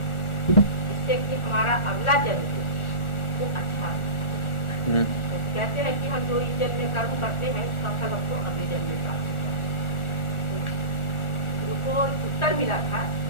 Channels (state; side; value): late; right; 1.4 ms